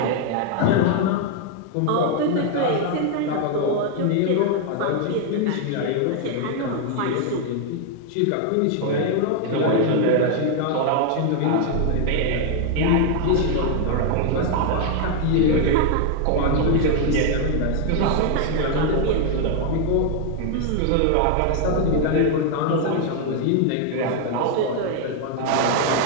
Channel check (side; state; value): both; different; correlation 0.00